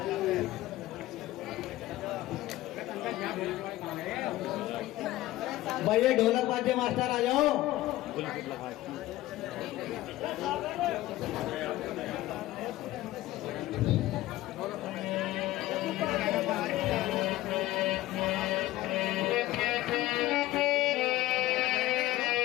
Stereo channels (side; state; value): right; quieter; 16.1 dB